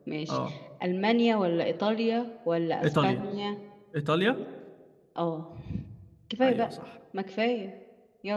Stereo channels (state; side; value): identical; both; correlation 1.00